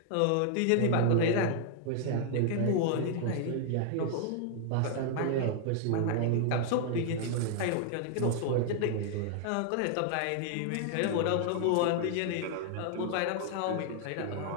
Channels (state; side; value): different; both; correlation 0.00